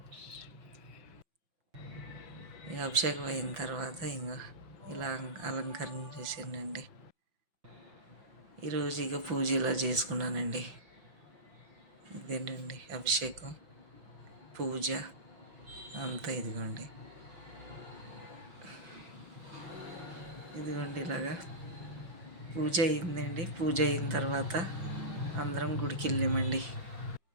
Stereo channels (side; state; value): left; late; 5.9 ms